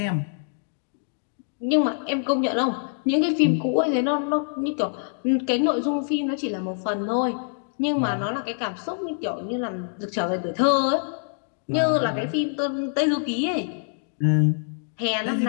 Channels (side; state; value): right; silent; digital silence